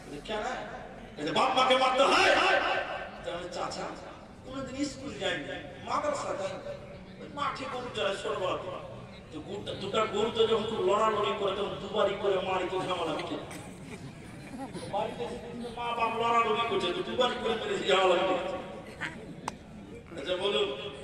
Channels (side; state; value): both; identical; correlation 1.00